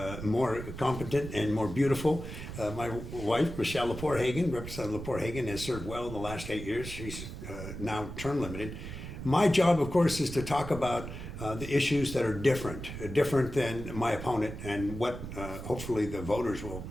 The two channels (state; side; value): noise; right; rumble, 9 dB below the sound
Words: more competent and more beautiful, my wife, Michelle Lepore Hagan. Representative Lepore Hagan has served well in the last 8 years. She's now term limited. My job, of course, is to talk about the issues that are different than my opponent and what hopefully the voters will